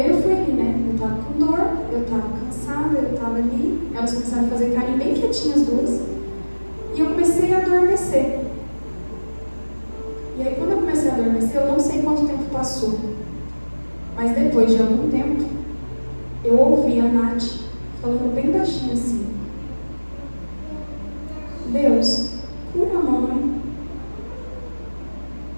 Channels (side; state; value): both; inverted; correlation -1.00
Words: eu fui ali, né? Eu estava com dor, eu estava cansada, eu estava ali. Elas começaram a fazer carinho bem quietinhas as 2. E eu comecei a adormecer. E aí quando eu comecei a adormecer, eu não sei quanto tempo passou. Mas depois de algum tempo, eu ouvi a Nath falando bem baixinho assim, Deus, cura a mamãe.